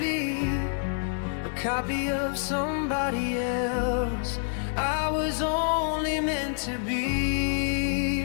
a copy of somebody else. I was only meant to be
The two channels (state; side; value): silent; right; 60 dB below the other